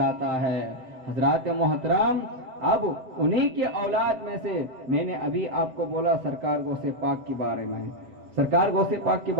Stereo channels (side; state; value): left; late; 7.7 ms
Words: है। हजरात मोहतरम, अब उन्हीं के औलाद में से मैंने अभी आपको बोला सरकार गौसे पाक के बारे में, सरकार गौसे पाक के